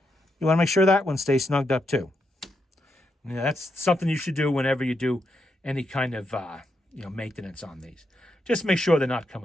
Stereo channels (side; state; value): both; normal; correlation 0.82